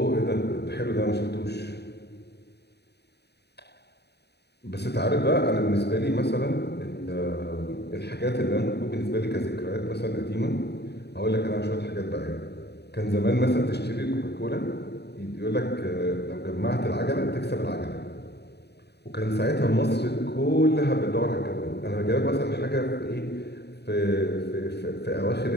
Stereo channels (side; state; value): right; late; 0.48 ms